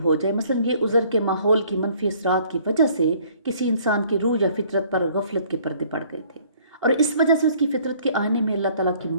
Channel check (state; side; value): inverted; both; correlation -0.58